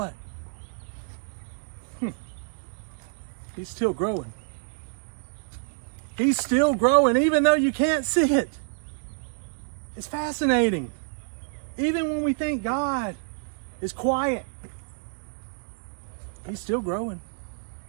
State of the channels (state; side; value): silent; left; digital silence